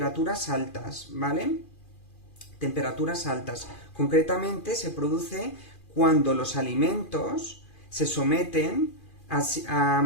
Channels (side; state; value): right; late; 2.4 ms